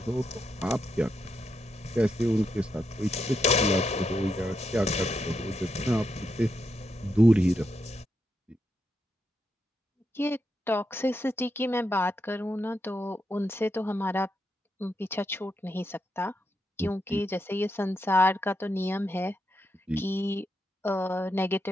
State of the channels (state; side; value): normal; both; correlation 0.83